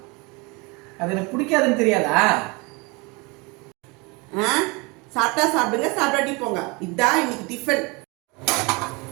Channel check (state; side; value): quieter; left; 27.2 dB